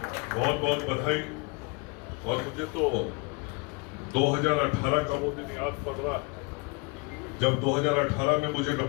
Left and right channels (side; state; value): right; quieter; 29.9 dB